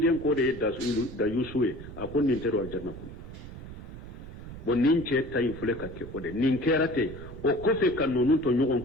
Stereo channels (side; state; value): right; noise; rumble, 12 dB below the sound